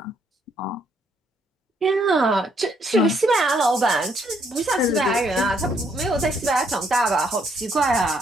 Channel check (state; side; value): normal; both; correlation 0.71